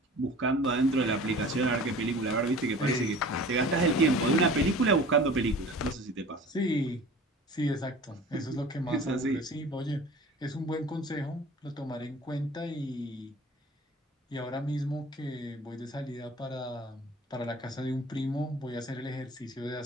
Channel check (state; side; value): normal; both; correlation 0.43